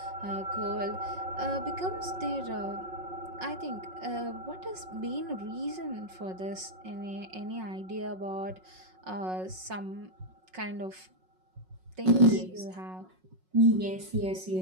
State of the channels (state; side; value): late; left; 5.4 ms